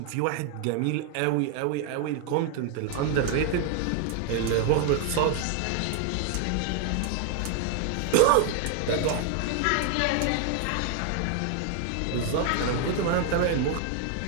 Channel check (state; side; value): different; both; correlation 0.00